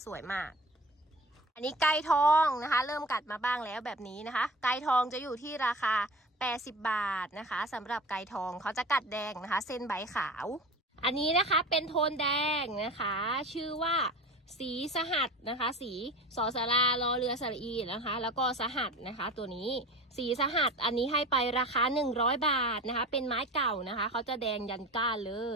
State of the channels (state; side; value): normal; both; correlation 0.36